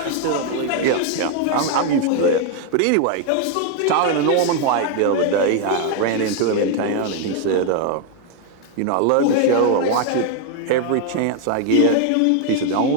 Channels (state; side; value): different; both; correlation 0.00